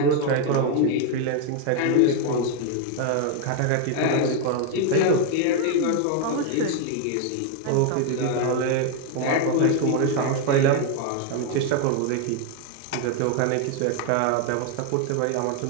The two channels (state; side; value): different; both; correlation 0.01